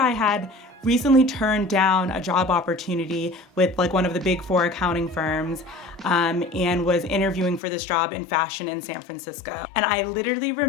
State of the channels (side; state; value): right; drops out; at 7.6 s